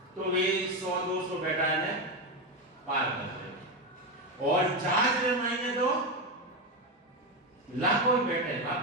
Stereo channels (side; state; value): both; normal; correlation 0.12